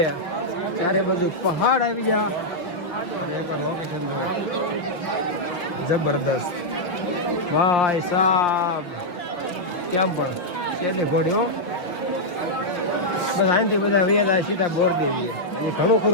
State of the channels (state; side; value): late; right; 5.9 ms